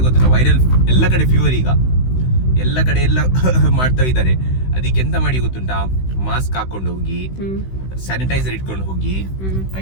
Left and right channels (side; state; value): right; late; 16 ms